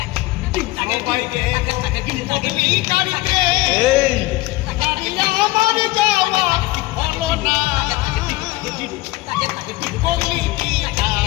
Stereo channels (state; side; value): quieter; right; 19.7 dB